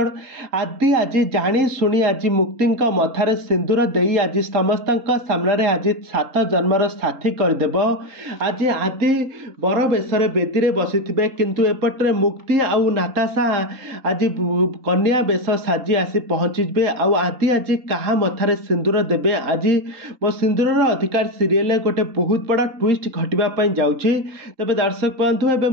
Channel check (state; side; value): late; left; 3.8 ms